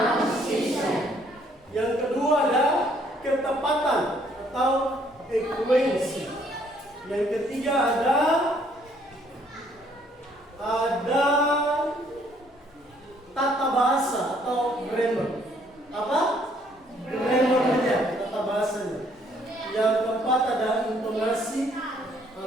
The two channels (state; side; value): normal; both; correlation 0.65